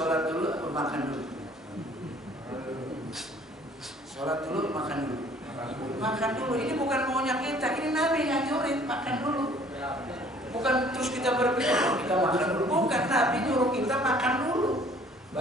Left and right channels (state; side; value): normal; both; correlation 0.55